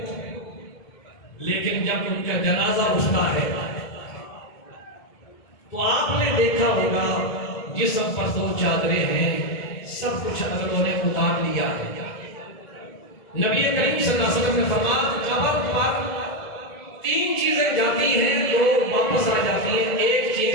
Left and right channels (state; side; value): late; right; 1.7 ms